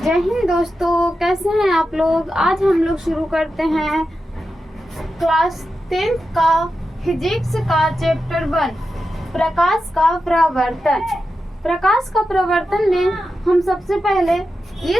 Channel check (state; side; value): normal; both; correlation 0.90